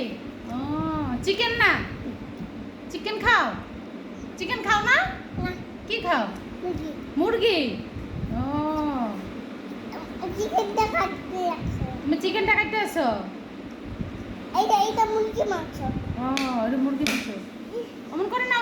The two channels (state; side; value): identical; both; correlation 1.00